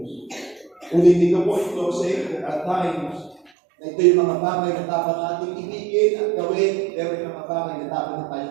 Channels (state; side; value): drops out; left; at 3.5 s